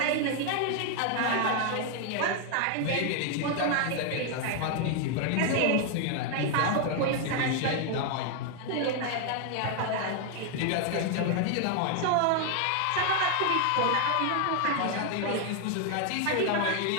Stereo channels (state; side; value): different; both; correlation 0.00